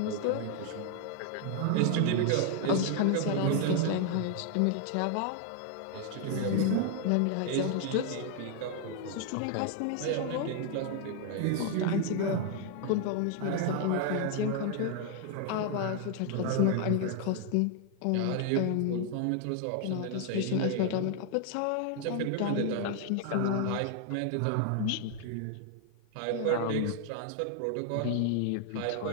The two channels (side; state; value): both; different; correlation 0.00